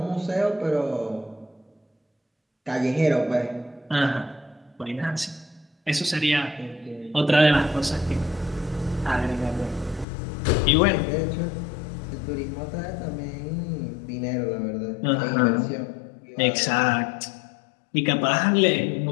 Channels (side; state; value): right; drops out; at 10.1 s